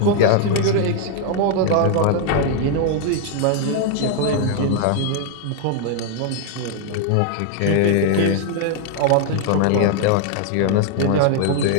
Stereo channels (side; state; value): both; different; correlation 0.00